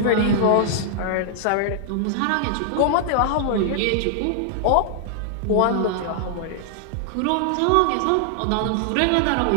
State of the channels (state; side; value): different; both; correlation -0.01